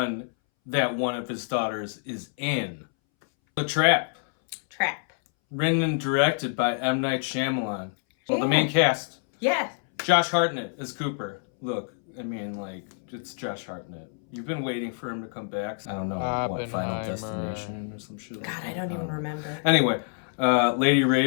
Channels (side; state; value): right; silent; 60 dB below the other